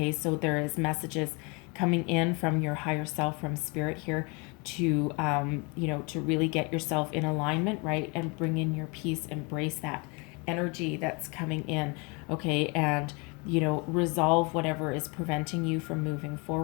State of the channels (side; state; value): right; quieter; 30.4 dB